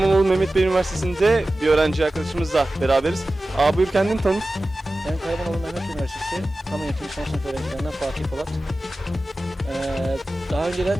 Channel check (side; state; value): both; normal; correlation 0.95